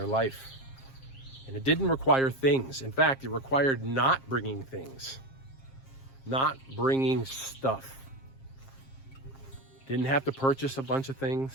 life. And it didn't require things. In fact, it required not bringing things, not bringing stuff. Didn't have to purchase a bunch of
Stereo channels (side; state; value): right; late; 7.5 ms